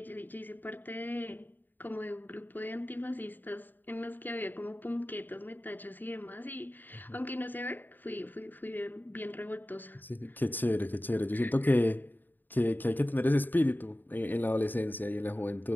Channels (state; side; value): late; right; 0.090 ms